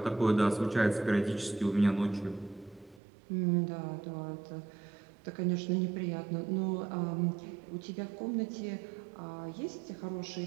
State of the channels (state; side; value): drops out; left; at 3.0 s